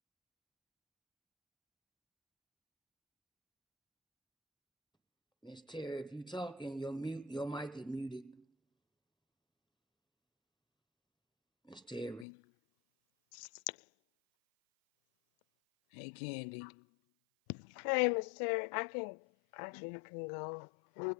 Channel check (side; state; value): right; drops out; at 12.2 s